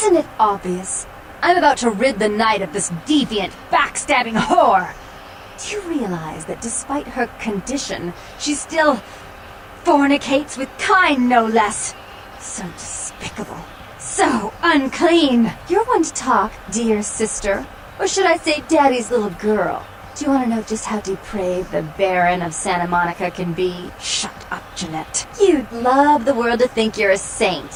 it obvious? I'm about to rid the night of this deviant, backstabbing whore. Do you realize that despite her condition, she still fornicates with kind, no less? So despicable. So unclean. You're one to talk, dear sister. Or should I say daddy's little girl? Do you want to know just how depraved the Baron of Santa Monica can be? Shut up, Jeanette. You'd love the world to think you're a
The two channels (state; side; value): identical; both; correlation 1.00